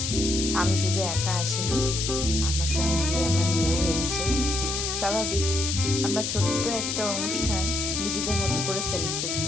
আমি শুধু একা আসিনি, আমার সঙ্গে আমার মেয়েও এসেছে। স্বাভাবিক, আমরা ছোট্ট একটা অনুষ্ঠান নিজেদের মতো করে সেলিব্রেট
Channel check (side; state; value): left; noise; hiss, 2 dB below the sound